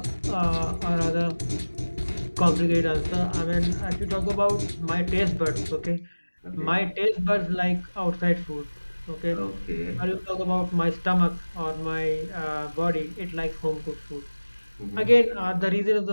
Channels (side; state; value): both; inverted; correlation -1.00